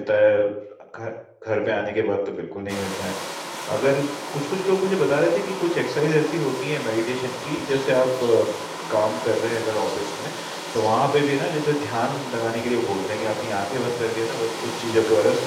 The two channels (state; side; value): identical; both; correlation 1.00